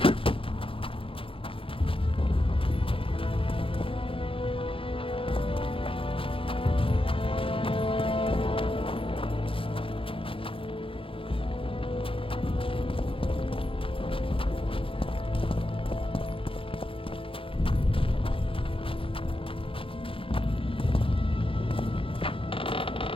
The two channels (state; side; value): late; right; 0.26 ms